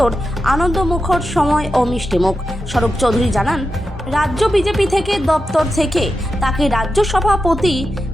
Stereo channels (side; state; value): both; normal; correlation 0.89